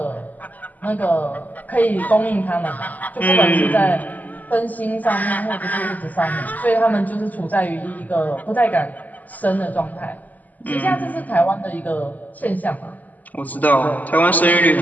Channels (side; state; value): right; late; 0.080 ms